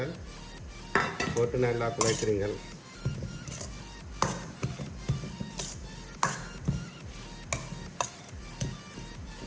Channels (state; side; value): identical; both; correlation 1.00